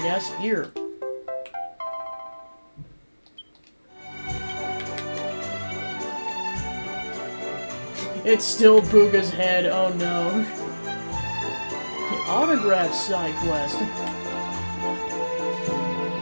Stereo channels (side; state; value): both; inverted; correlation -1.00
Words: guess. Here. It's still Booga's head. Oh no. The autograph side quest.